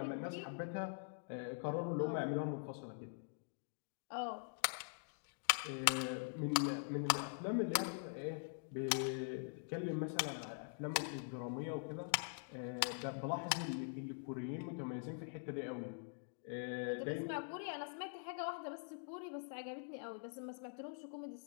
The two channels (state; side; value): silent; right; digital silence